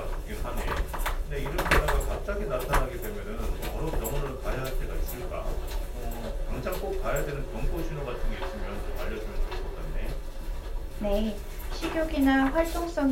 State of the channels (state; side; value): identical; both; correlation 1.00